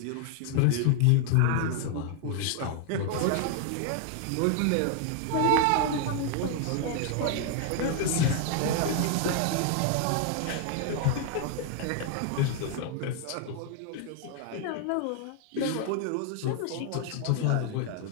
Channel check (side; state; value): both; different; correlation 0.00